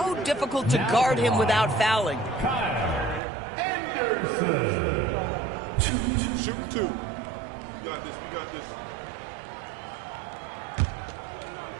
difficult to guard him without fouling. Anderson. Shoot 2. You got this. We got this.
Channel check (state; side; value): drops out; left; at 3.2 s